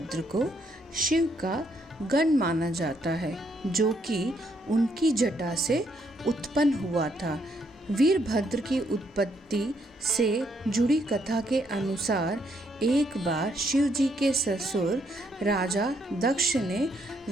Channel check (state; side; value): normal; both; correlation 0.73